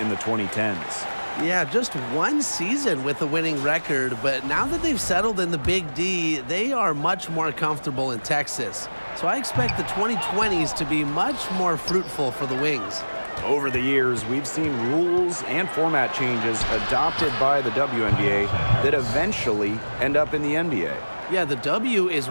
in the 2010s. Yeah, just one season with a winning record, but now that they've settled in the Big D, they are much more comfortable in Texas. So I expect the 2020s to be much more fruitful for the Wings. Over the years, we've seen rules and format changes adopted by the WNBA that eventually end up in the NBA. Yeah, the W is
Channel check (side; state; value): both; inverted; correlation -1.00